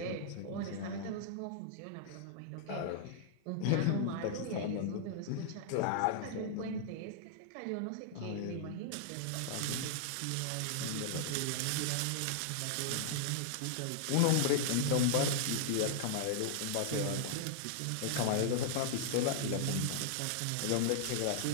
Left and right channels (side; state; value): both; different; correlation -0.01